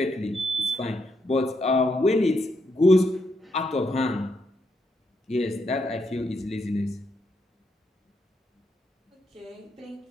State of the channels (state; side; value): normal; both; correlation 0.79